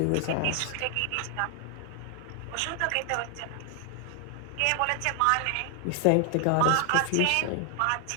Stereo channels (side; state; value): both; different; correlation 0.00